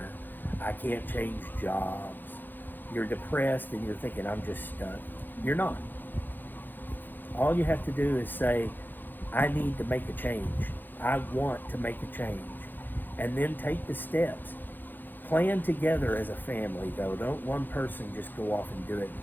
I can't change jobs, you're depressed and you're thinking, I'm just stuck. You're not. All you have to do is say, I need to make a change. I want to make a change. And then take the steps. Plan together as a family, though. Don't one person just go off and do it,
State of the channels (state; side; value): late; right; 0.090 ms